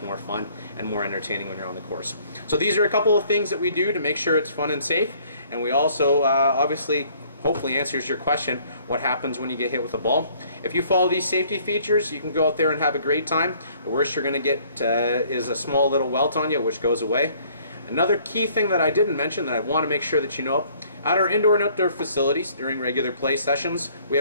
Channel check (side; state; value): both; inverted; correlation -0.59